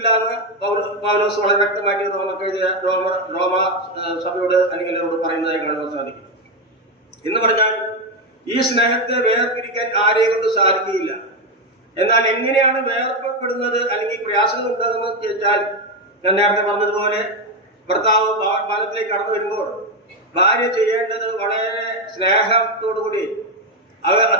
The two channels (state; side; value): normal; both; correlation 0.09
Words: എന്ന് പൗലോസ് വളരെ വ്യക്തമാക്കി റോമ സഭയോട് അല്ലെങ്കിൽ അവരോട് പറയുന്നതായി കാണുവാൻ സാധിക്കും. എന്ന് പറഞ്ഞാൽ ഈ സ്നേഹത്തെ വേർപിരിക്കാൻ ആരെ കൊണ്ട് സാധിക്കുകയില്ല. എന്നാൽ എങ്ങനെയാണ് വേർപെടുന്നത് അല്ലെങ്കിൽ പ്രയാസങ്ങൾ ഉണ്ടാകുന്നത് ചോദിച്ചാൽ, ഞാൻ നേരത്തെ പറഞ്ഞതുപോലെ ഭർത്താവ് ഭവനത്തിലേക്ക് കടന്നു വരുമ്പോൾ ഭാര്യ ചെയ്യേണ്ടത് വളരെ സ്നേഹത്തോടുകൂടി